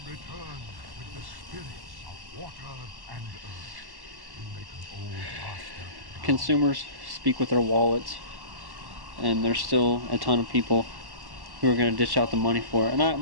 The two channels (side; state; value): left; late; 1.1 ms